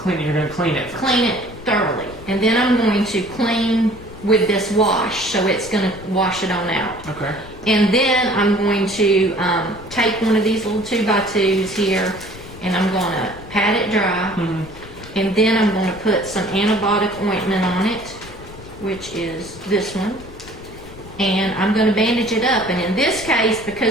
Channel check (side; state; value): left; noise; rumble, 17 dB below the sound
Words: You're going to clean it first. Clean it thoroughly, and then I'm going to clean with this wash, so it's going to wash it on out. Okay. And then I'm going to take one of these little 2x2s here, and I'm going to pat it dry, and then I'm going to put some antibiotic ointment on it, which is this one. And I'm going to bandage it up. And in this case,